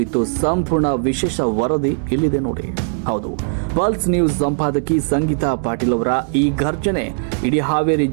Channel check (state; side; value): silent; left; digital silence